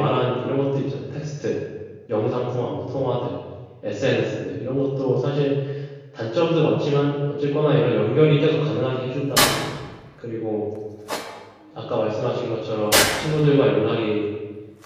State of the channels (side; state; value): both; identical; correlation 1.00